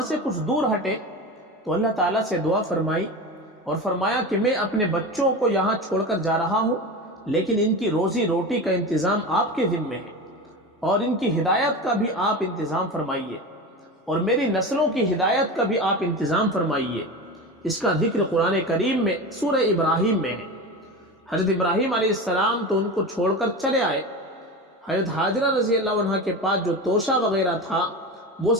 سے کچھ دور ہٹے تو اللہ تعالیٰ سے دعا فرمائی اور فرمایا کہ میں اپنے بچوں کو یہاں چھوڑ کر جا رہا ہوں، لیکن ان کی روزی روٹی کا انتظام آپ کے ذمہ ہے، اور ان کی ہدایت کا بھی آپ انتظام فرمائیے، اور میری نسلوں کی ہدایت کا بھی آپ انتظام فرمائیے۔ اس کا ذکر قرآن کریم میں سورہ ابراہیم میں ہے۔ حضرت ابراہیم علیہ السلام تو ان کو چھوڑ کر چلے آئے۔ حضرت حاجرہ رضی اللہ عنہ کے پاس جو توشہ وغیرہ تھا وہ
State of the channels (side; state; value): both; normal; correlation 0.26